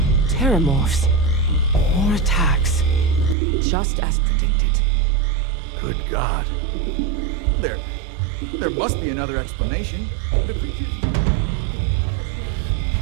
Terramorphs. More attacks. Just as predicted. Good God. There must be another explanation. The creatures evaded our scanner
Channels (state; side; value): drops out; left; at 3.4 s